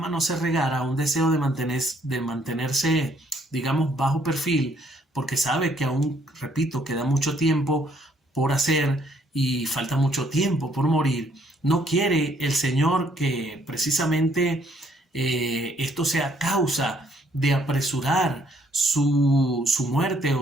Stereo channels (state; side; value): normal; both; correlation 0.66